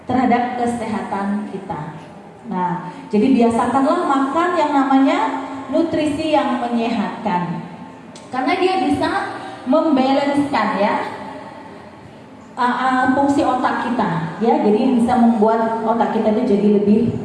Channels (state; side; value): identical; both; correlation 1.00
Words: terhadap kesehatan kita. Nah, jadi biasakanlah makan yang namanya nutrisi yang menyehatkan. Karena dia bisa membalanskan ya fungsi otak kita, ya. Jadi bisa membuat otak kita itu jadi lebih